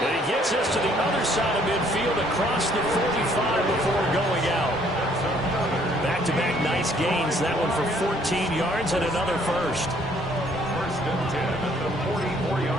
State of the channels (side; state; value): both; normal; correlation 0.63